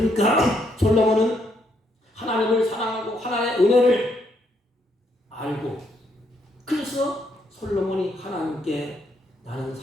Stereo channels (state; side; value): normal; both; correlation 0.74